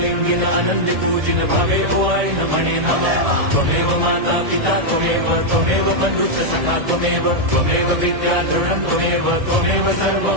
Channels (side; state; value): left; late; 1.7 ms